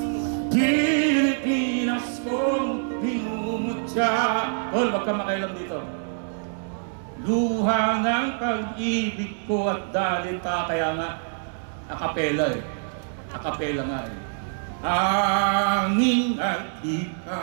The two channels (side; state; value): left; silent; digital silence